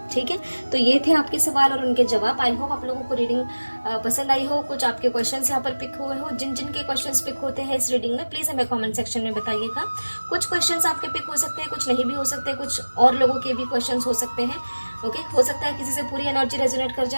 ठीक है, तो ये थे आपके सवाल और उनके जवाब। आई होप आप लोगों को रीडिंग पसंद आई हो, कुछ आपके क्वेश्चंस यहाँ पर पिक हुए हो। जिन जिन के क्वेश्चंस पिक होते हैं इस रीडिंग में प्लीज़ हमें कमेंट सेक्शन में बताइएगा। कुछ क्वेश्चंस आपके पिक हो सकते हैं, कुछ नहीं भी हो सकते, कुछ और लोगों के भी क्वेश्चंस हो सकते हैं। ओके, हो सकता है किसी से पूरी एनर्जी रेजोनेट कर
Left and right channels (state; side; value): inverted; both; correlation -1.00